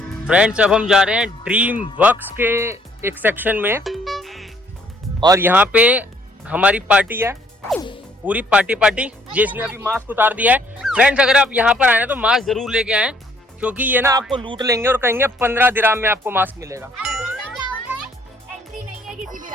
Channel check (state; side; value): normal; both; correlation 0.63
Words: फ्रेंड्स अब हम जा रहे हैं ड्रीम वर्क्स के एक सेक्शन में और यहाँ पे हमारी पार्टी है, पूरी पार्टी जिसने अभी मास्क उतार दिया है। फ्रेंड्स अगर आप यहाँ पर आए ना तो मास्क जरूर लेके आए, क्योंकि ये ना आपको लूट लेंगे और कहेंगे 15 दिरहम में आपको मास्क मिलेगा। एंट्री नहीं है किसी भी